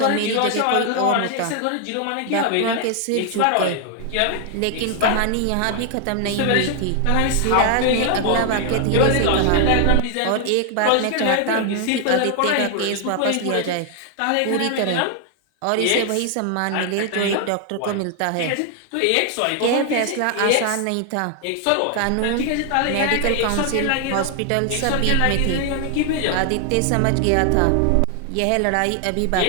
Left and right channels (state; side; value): different; both; correlation 0.00